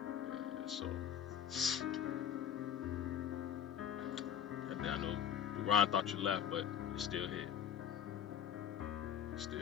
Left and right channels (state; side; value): quieter; right; 9.1 dB